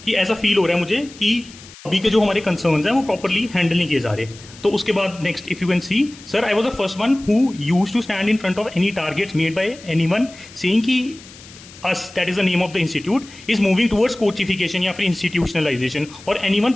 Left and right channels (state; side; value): noise; left; hiss, 20 dB below the sound